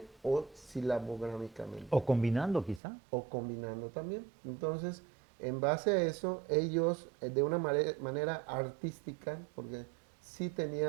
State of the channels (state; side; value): drops out; left; at 2.8 s